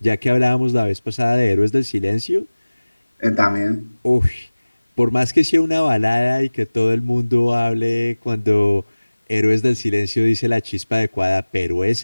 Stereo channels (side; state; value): both; inverted; correlation -1.00